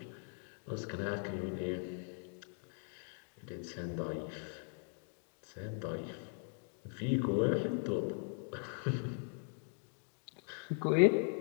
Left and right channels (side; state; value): right; silent; 51 dB below the other